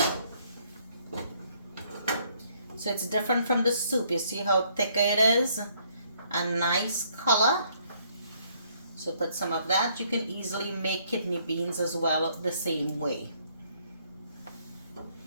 So it's different from the soup. You see how thick it is? A nice color. So put some of that. You can easily make kidney beans as well the same way.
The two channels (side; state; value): both; inverted; correlation -0.67